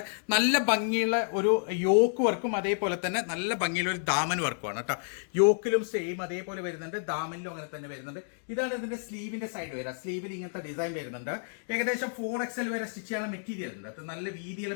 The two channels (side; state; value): right; silent; digital silence